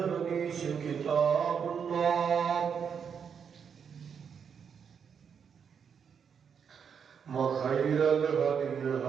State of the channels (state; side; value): quieter; left; 7.0 dB